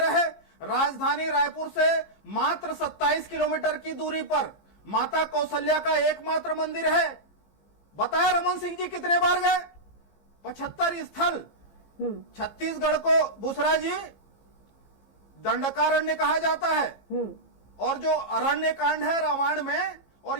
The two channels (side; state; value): right; late; 15 ms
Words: राजधानी रायपुर से मात्र 27 किलोमीटर की दूरी पर माता कौशल्या का एकमात्र मंदिर है। बताया रमन सिंह जी कितने बार गए? 75 स्थल। छत्तीसगढ़ को बुसरा जी दंडकारण्य कहा जाता है, और जो अरण्य कांड है रामायण में, और